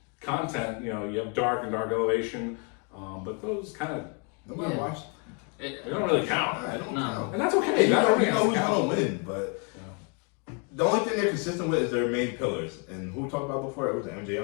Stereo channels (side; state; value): right; quieter; 35.6 dB